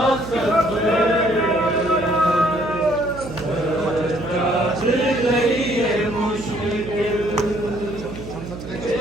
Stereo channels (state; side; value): noise; right; hum, 11 dB below the sound